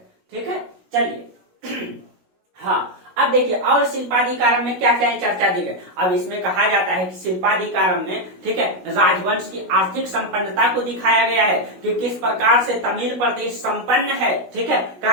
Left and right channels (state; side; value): late; left; 16 ms